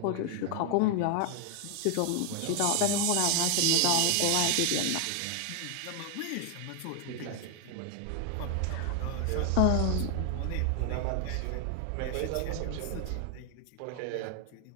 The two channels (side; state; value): both; different; correlation 0.01